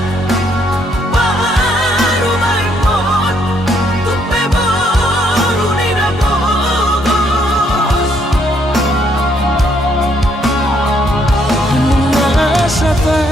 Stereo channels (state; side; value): normal; both; correlation 0.71